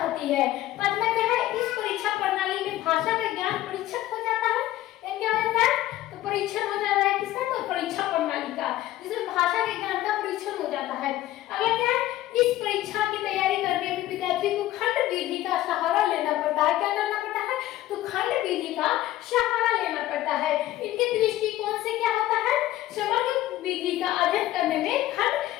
है। पांचवा क्या है, इस परीक्षा प्रणाली में भाषा का ज्ञान परीक्षक हो जाता है। क्या होता है, तो परीक्षण हो जाता है किसका, तो परीक्षा प्रणाली का, जिसमें भाषा के ज्ञान का परीक्षण हो जाता है। अगला क्या है, इस परीक्षा की तैयारी करने में विद्यार्थी को खंड विधि का सहारा लेना पड़ता है। क्या करना पड़ता है, तो खंड विधि का सहारा लेना पड़ता है। इनके दृष्टिकोण से क्या होता है, समग्र विधि का अध्ययन करने में खंड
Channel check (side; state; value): right; quieter; 14.8 dB